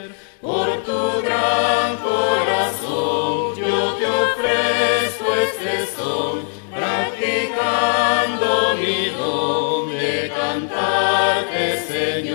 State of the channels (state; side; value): silent; right; 66 dB below the other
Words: Por tu gran corazón yo te ofrezco este son, practicando mi don de cantarte,